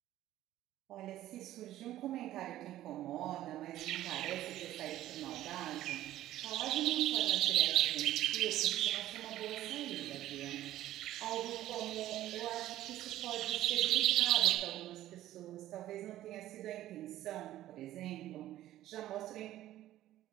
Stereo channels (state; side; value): quieter; left; 13.9 dB